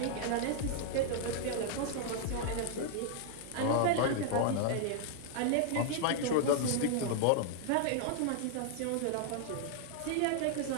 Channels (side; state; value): both; different; correlation -0.01